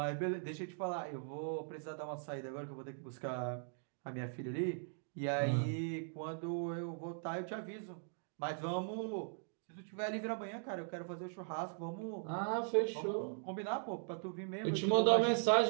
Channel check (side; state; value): left; silent; digital silence